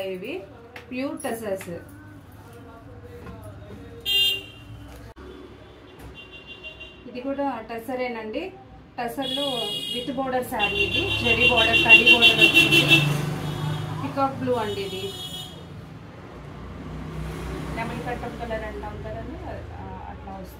ఇవి ప్యూర్ టసర్స్. ఇది కూడా టసరేనండి. టసర్లో విత్ బోర్డర్ శారీ. ఇది జరీ బోర్డర్, కడ్డీ బోర్డర్ వచ్చింది. పికాక్ బ్లూ అండి. ఇది లెమన్ కట్టం కలర్ అంటాం కదండి, అట్లా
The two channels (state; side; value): identical; both; correlation 1.00